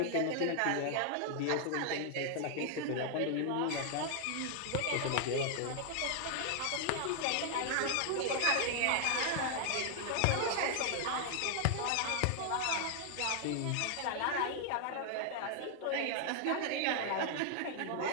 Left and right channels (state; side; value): different; both; correlation 0.00